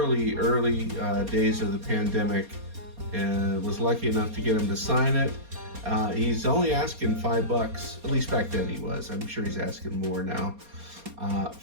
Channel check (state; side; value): late; left; 4.3 ms